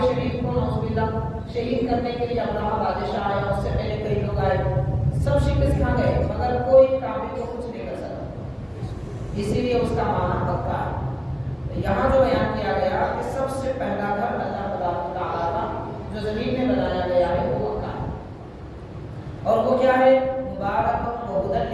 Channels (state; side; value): identical; both; correlation 1.00